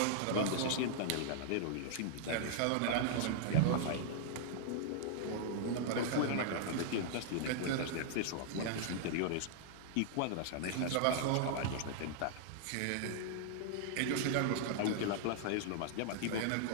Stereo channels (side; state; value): both; different; correlation -0.01